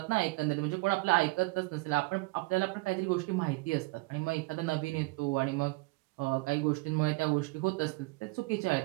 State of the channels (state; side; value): quieter; left; 24.7 dB